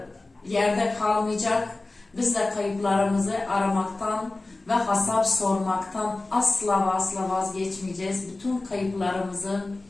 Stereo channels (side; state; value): right; quieter; 3.1 dB